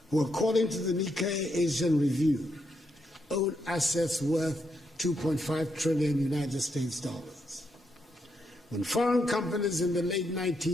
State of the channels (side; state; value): both; normal; correlation 0.80